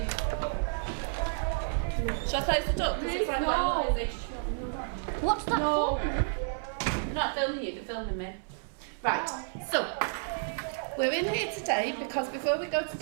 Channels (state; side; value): silent; left; 57 dB below the other